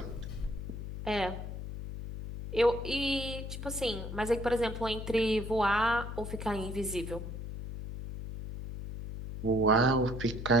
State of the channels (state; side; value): noise; left; hum, 7 dB below the sound